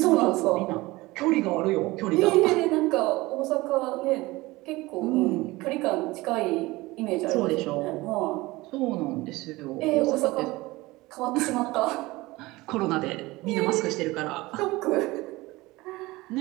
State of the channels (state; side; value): quieter; left; 20.6 dB